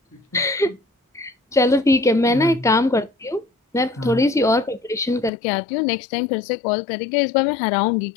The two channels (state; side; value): drops out; right; at 5.3 s